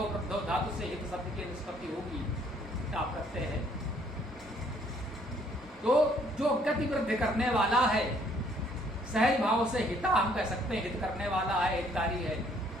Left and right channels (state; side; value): normal; both; correlation 0.63